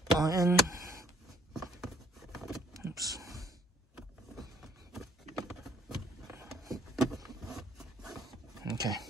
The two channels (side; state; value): both; normal; correlation 0.63